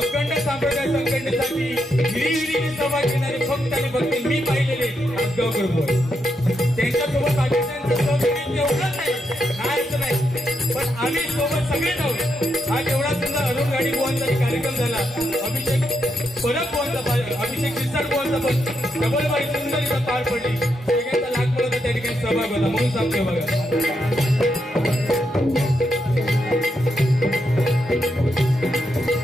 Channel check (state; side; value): normal; both; correlation 0.82